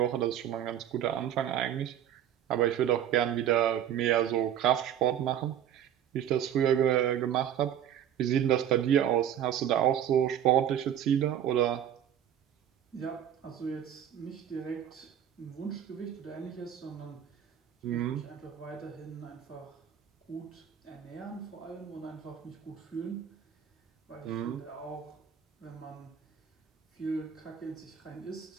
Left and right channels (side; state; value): left; quieter; 10.0 dB